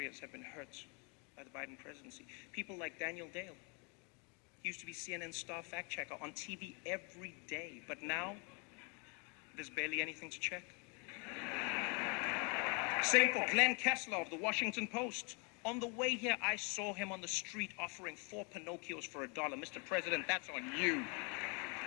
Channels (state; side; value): quieter; right; 34.3 dB